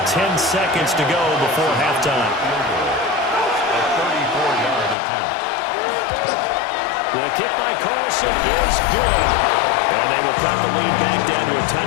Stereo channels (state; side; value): drops out; right; at 5.0 s